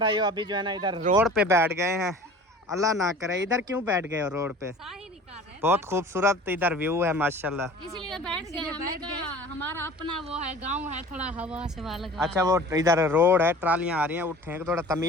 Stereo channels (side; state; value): both; normal; correlation 0.43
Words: अभी जो है ना इधर रोड पे बैठ गए हैं। अल्लाह ना करे इधर क्यों बैठ गए हो रोड पे? साही निकाल रहे बहुत खूबसूरत इधर व्यू है माशाल्लाह। इसलिए बैठ गए। हमने कहा हमारा अपना वो है, गांव है, थोड़ा हवा से वाला लगा। अच्छा वो इधर रोड है, ट्रालियां आ रही हैं, उठे थोड़ा